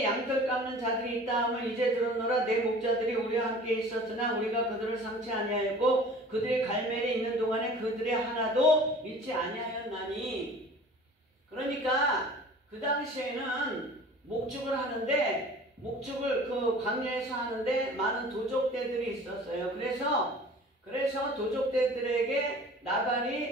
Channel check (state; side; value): normal; both; correlation 0.44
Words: 양털 깎는 자들이 있다 하면 이제 들었노라. 내 목자들이 우리와 함께 있었으나 우리가 그들을 상치 아니하였고 그들의 갈멜에 있는 동안에 그들의 하나도 잃지 아니하였나니. 그러니까 그 당시에는 목축을 하는데 그 광야에서 하는데 많은 도적대들이 있었어요. 그래서 도적대들에게